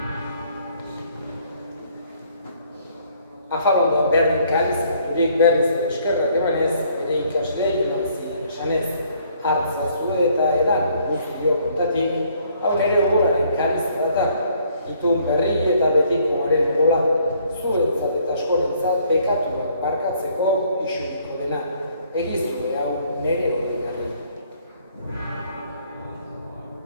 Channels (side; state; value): both; inverted; correlation -0.64